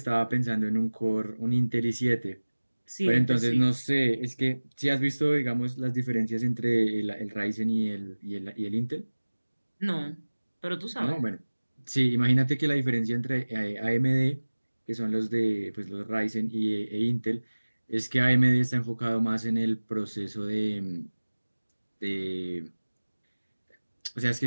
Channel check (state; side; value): inverted; both; correlation -1.00